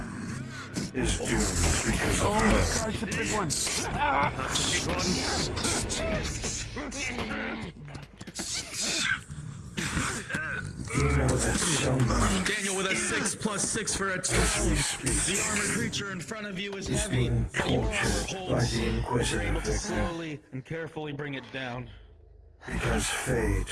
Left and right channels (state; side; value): identical; both; correlation 1.00